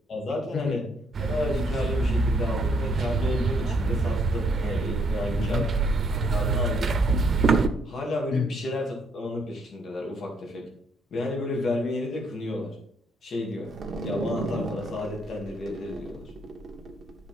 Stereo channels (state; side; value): normal; both; correlation 0.70